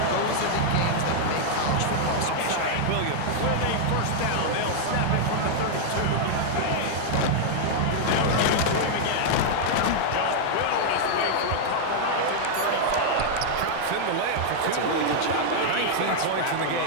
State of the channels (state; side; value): different; both; correlation -0.01